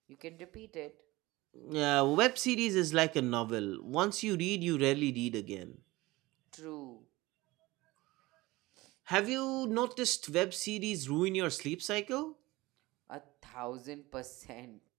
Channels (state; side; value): quieter; left; 20.2 dB